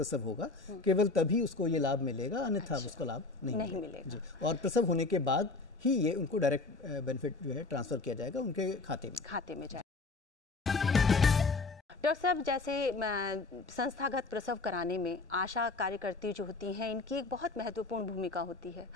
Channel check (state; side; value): quieter; right; 3.7 dB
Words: होगा केवल तभी उसको ये लाभ मिलेगा, अन्यथा उसको लाभ नहीं मिलेगा। जी। और प्रसव होने के बाद ही ये उनको डायरेक्ट बेनिफिट जो है ट्रांसफर किया जाएगा उनके खाते में जाएगा। डॉक्टर साहब, जैसे संस्थागत प्रसव कराने में आशा कार्यकर्ती जो होती हैं इनकी एक बहुत महत्वपूर्ण भूमिका होती है,